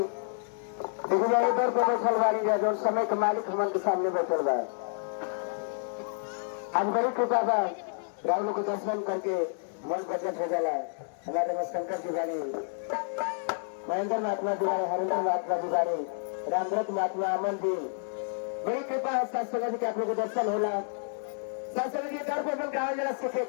देखिए जाए इधर को बैठल वाली जाए जो समय के मालिक हमन के सामने बैठल बा। आज बड़ी कृपा बा, राहुल को दर्शन करके मन प्रकट हो जाला। हमारे शंकर जी बानी, महेंद्र महात्मा दुआरे, हरेंद्र महात्मा दुआरे, रामव्रत महात्मा अमन जी, बड़ी कृपा है सत्संग जी के आप लोग को दर्शन होला। सत्संग जी दर पर गाँव जरा सीखे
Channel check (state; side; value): silent; right; digital silence